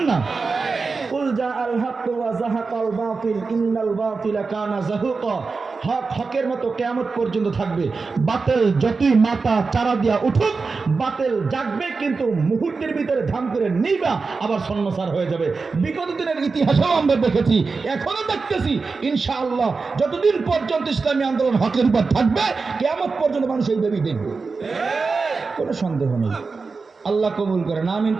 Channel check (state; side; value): quieter; left; 4.4 dB